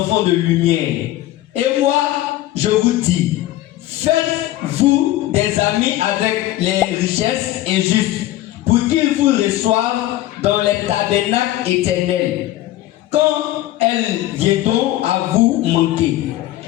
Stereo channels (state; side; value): quieter; right; 15.0 dB